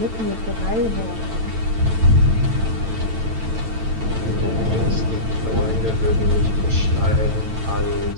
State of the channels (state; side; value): late; left; 9.0 ms